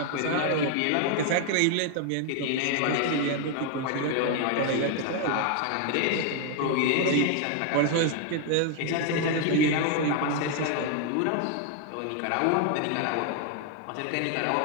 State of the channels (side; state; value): both; different; correlation 0.00